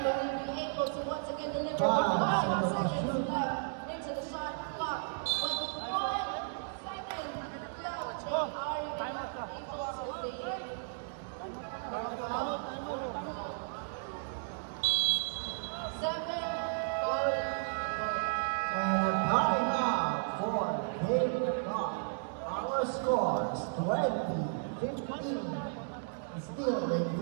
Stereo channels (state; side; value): silent; left; digital silence